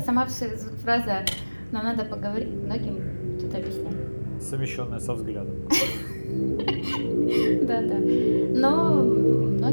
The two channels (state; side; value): inverted; both; correlation -1.00